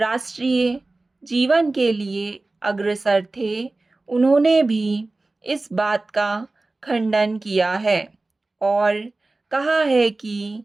जीवन के लिए अग्रसर थे, उन्होंने भी इस बात का खंडन किया है और कहा है कि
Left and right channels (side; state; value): left; quieter; 3.2 dB